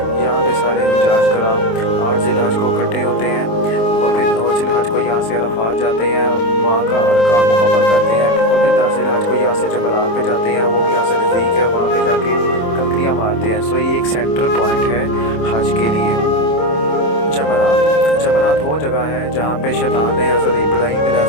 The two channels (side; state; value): right; late; 27 ms